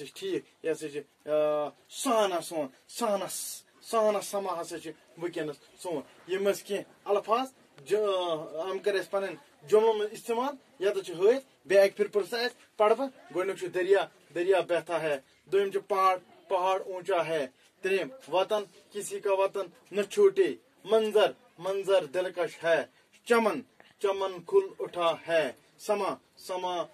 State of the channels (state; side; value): identical; both; correlation 1.00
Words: ٹھیک یہ سہانا سون سہانا سہانا سما ہسا ونکینس سون. یم کی الفاظ ہم کر پن جملوں میں استعمال یت ہت. بی اک پھر پرسا پڑھ گۄڈنیُک دریا. دریا بہتا ہے. دویم پہاڑ. پہاڑ اونچا ہے. تریم وطن. کسی کا وطن نہ چھوٹے. منظر. منظر دلکش ہے. چمن. چمن کھل اٹھا ہے. سما. سما